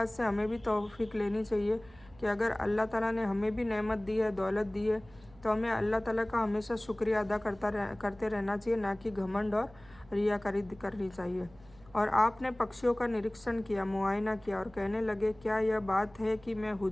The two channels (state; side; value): noise; right; hum, 25 dB below the sound